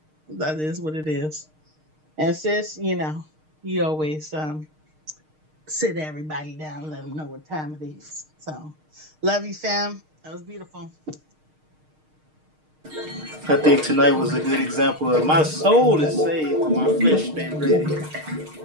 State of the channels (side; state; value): left; late; 6.5 ms